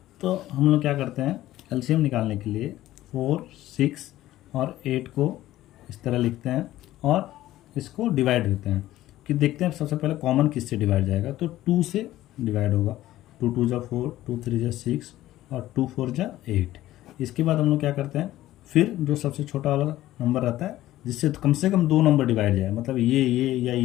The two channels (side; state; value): right; quieter; 14.9 dB